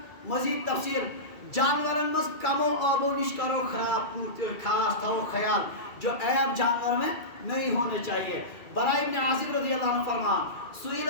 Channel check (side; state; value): right; late; 2.3 ms